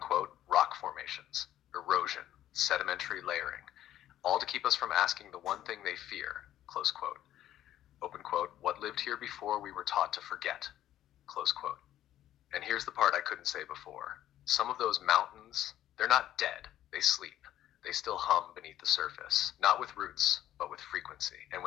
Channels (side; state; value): right; quieter; 12.5 dB